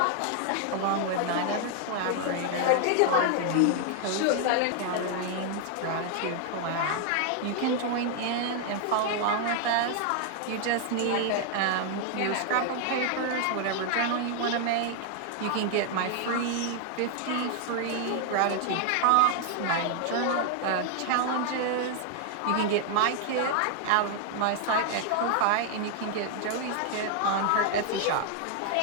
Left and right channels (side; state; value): both; different; correlation 0.00